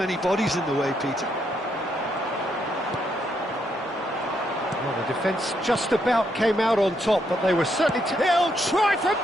bodies in the way, Peter. Well, the defence just about came out on top, but they were certainly... He'll try from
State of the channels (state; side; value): normal; both; correlation 0.77